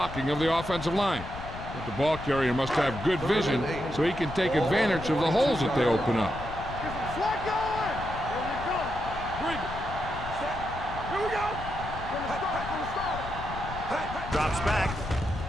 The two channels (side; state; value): left; noise; rumble, 10 dB below the sound